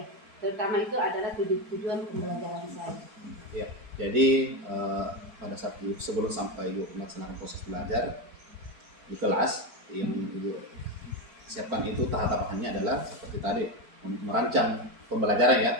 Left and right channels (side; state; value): left; late; 4.4 ms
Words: Terutama itu adalah tujuan pembelajaran saya. Iya. Jadi pada saat sebelum sampai Ibu melaksanakan proses belajar di kelas, yang Ibu siapkan itu tahapannya adalah seperti tadi, merancang pembelajaran ya.